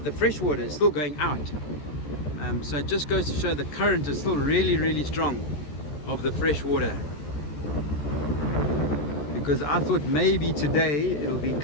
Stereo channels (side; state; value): right; late; 14 ms